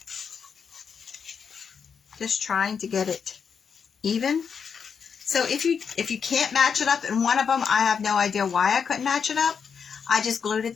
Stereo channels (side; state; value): right; quieter; 6.5 dB